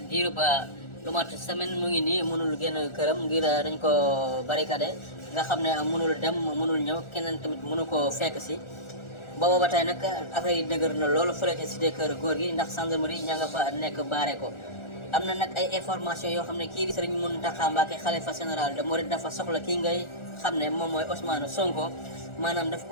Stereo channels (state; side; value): late; right; 1.4 ms